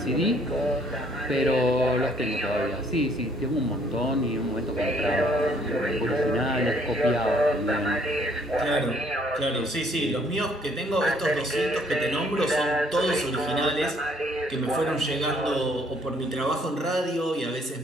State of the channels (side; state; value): both; normal; correlation 0.63